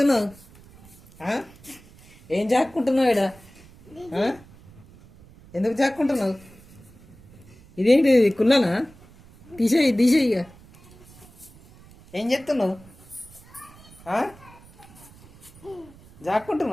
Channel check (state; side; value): noise; right; rumble, 24 dB below the sound